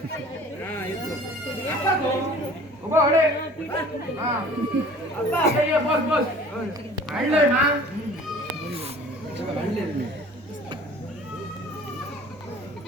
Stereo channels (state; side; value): normal; both; correlation 0.47